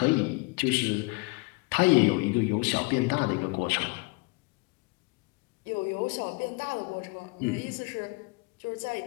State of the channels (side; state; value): right; quieter; 27.5 dB